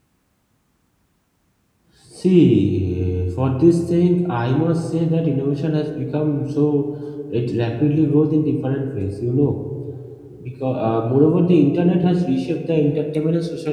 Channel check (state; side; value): identical; both; correlation 1.00